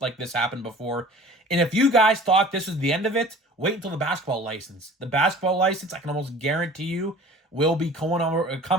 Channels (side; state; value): both; normal; correlation 0.45